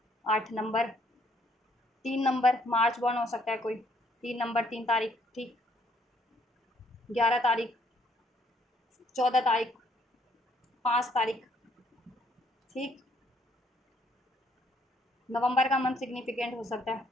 8 नंबर, 3 नंबर मार्च बॉर्न हो सकता है कोई, 3 नंबर, 3 तारीख, ठीक, 11 तारीख, 14 तारीख, 5 तारीख, ठीक। नवंबर का मंथ सिग्निफिकेंट हो सकता है,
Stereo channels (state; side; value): normal; both; correlation 0.67